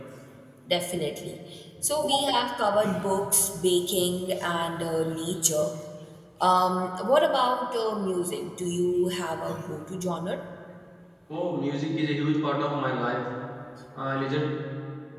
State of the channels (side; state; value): both; identical; correlation 1.00